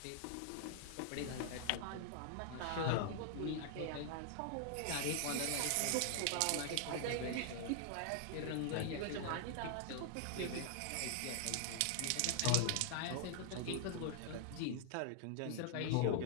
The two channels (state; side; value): different; both; correlation -0.01